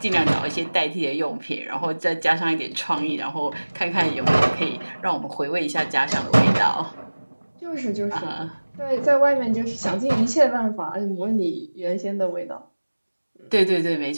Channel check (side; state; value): both; inverted; correlation -1.00